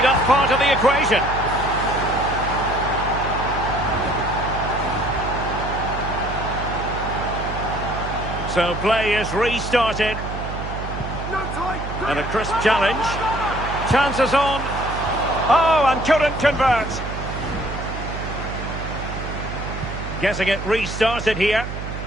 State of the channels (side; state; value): right; noise; hum, 7 dB below the sound